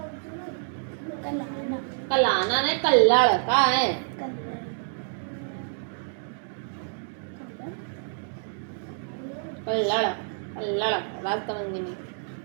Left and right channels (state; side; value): silent; left; digital silence